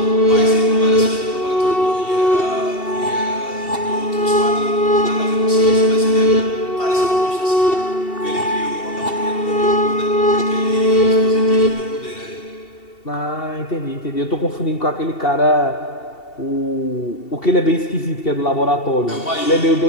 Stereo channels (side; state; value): right; late; 2.7 ms